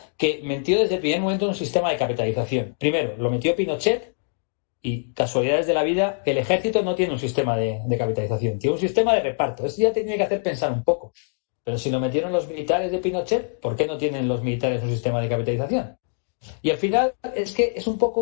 que metió desde el primer momento un sistema de capitalización. Primero, lo metió Pinochet y, casualidades de la vida, el ejército no tiene un sistema de capitalización, tiene un sistema de reparto. Eso ya te tiene que hacer pensar un poco. Pero si lo metieron los militares de Pinochet, ¿por qué no tienen los militares un sistema de capitalización? Y al final es que es un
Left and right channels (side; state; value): right; silent; digital silence